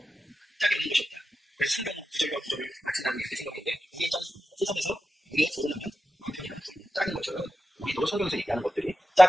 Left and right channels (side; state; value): both; normal; correlation 0.91